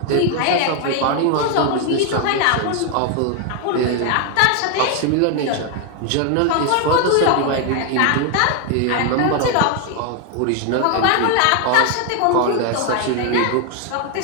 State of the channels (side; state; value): both; different; correlation 0.01